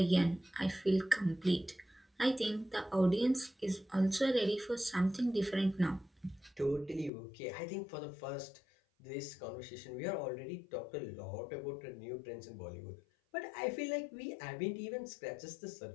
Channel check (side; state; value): right; drops out; at 7.1 s